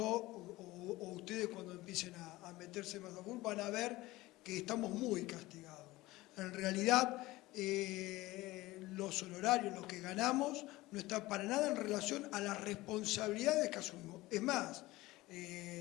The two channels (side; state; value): right; quieter; 18.9 dB